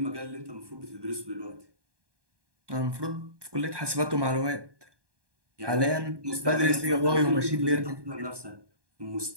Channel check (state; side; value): late; left; 1.2 ms